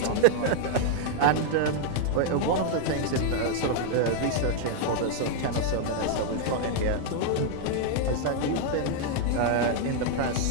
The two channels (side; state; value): both; different; correlation 0.00